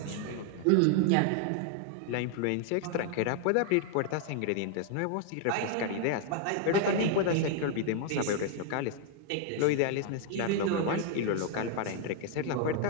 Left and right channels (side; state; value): both; different; correlation 0.00